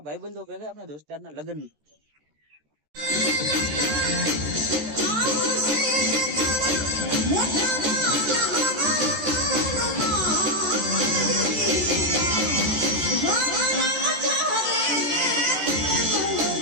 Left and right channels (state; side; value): late; left; 14 ms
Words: ભેગા આપણે દોસ્તારના લગ્ન